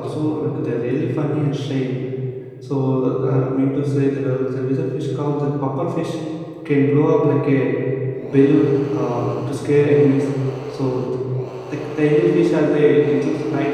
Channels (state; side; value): identical; both; correlation 1.00